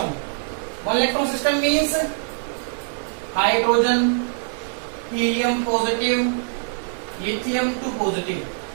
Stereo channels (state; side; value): silent; left; digital silence